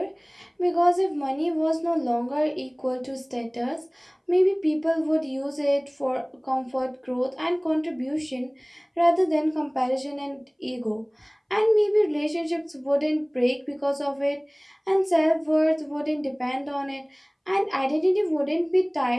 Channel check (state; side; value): identical; both; correlation 1.00